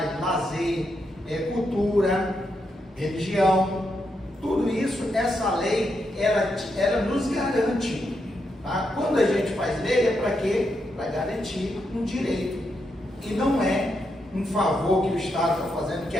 lazer, cultura, religião, tudo isso, essa lei, ela nos garante. Tá? Quando a gente faz lei, é para quê? Para garantir um direito. E não é um favor que o Estado está fazendo, que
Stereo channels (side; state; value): both; normal; correlation 0.82